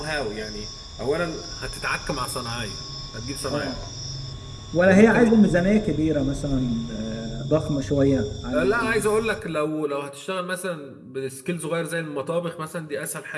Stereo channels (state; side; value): identical; both; correlation 1.00